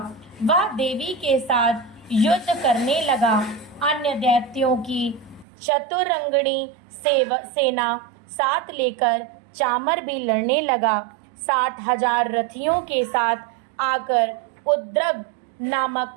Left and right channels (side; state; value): left; drops out; at 5.5 s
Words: वह देवी के साथ युद्ध करने लगा। अन्य दैत्यों की चतुरंगणी सेना साथ लेकर चामर भी लड़ने लगा। 60,000 रथियों के साथ आकर उद्रग नामक